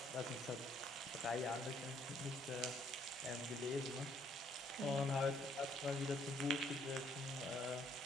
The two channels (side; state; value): both; normal; correlation 0.66